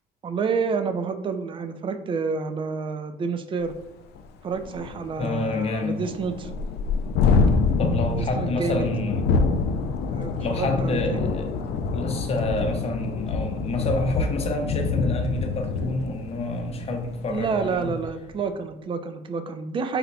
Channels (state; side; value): normal; both; correlation 0.46